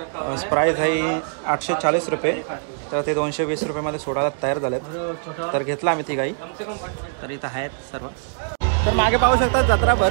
प्राईस आहे 840 रुपये. तर ते 220 रुपयामध्ये सोडायला तयार झालेत. तर घेतला आम्ही ती गाई. तर इथं आहेत सर्व. तर मागे पाहू शकता जत्रा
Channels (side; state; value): left; silent; digital silence